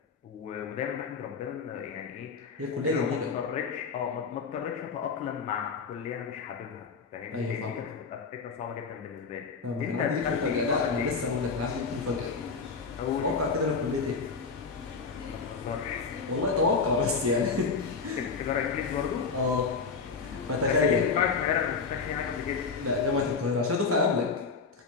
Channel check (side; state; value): right; quieter; 4.9 dB